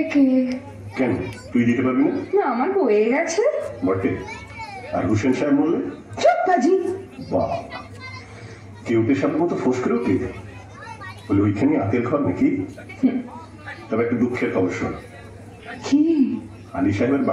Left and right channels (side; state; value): both; identical; correlation 1.00